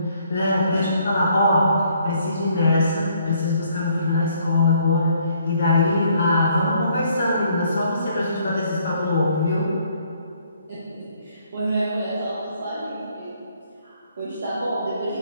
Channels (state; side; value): inverted; both; correlation -0.66